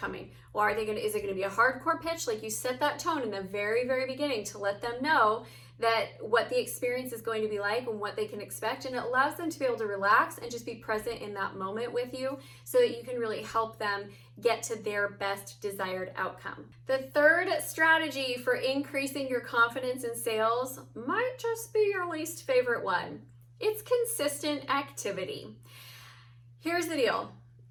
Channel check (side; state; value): both; identical; correlation 1.00